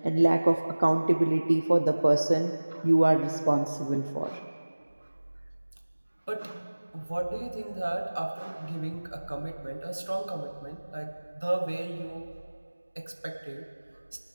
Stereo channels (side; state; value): both; inverted; correlation -1.00